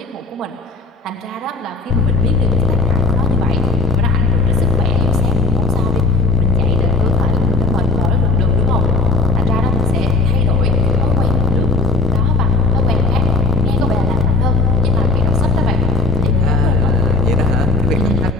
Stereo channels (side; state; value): right; quieter; 3.7 dB